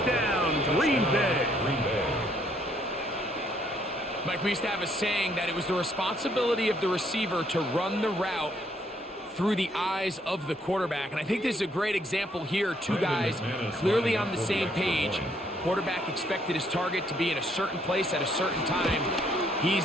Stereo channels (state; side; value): normal; both; correlation 0.69